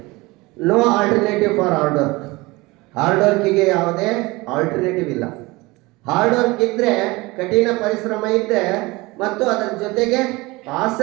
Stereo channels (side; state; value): left; quieter; 22.5 dB